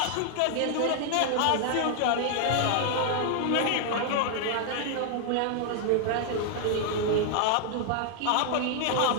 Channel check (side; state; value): both; different; correlation 0.00